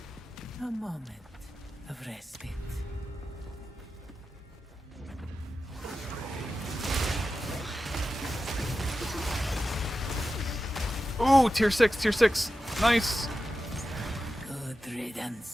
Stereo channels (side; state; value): both; normal; correlation 0.92